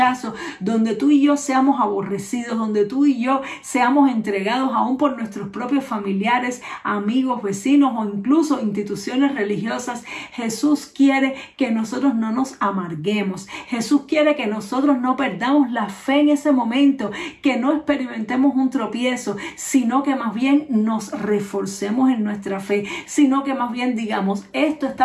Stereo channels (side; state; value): both; identical; correlation 1.00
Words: donde tú y yo seamos aborrecidos, donde tú y yo seamos entregados aún por nuestros propios familiares, amigos, vecinos o incluso instituciones religiosas, Jesús quiere que nosotros no nos amarguemos. Jesús quiere que nosotros no perdamos la fe en ese momento, que no experimentemos un tropiezo, sino que más bien nos reforcemos en nuestra fe, sino que más bien digamos, esto